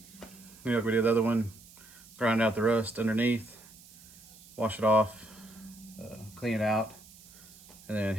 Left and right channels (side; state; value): right; noise; hiss, 22 dB below the sound